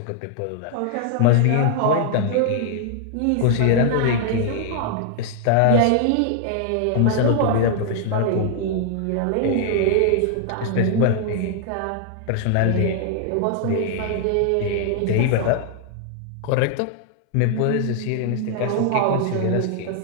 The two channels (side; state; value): both; different; correlation 0.00